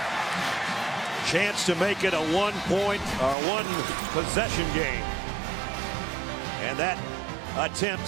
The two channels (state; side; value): drops out; left; at 3.4 s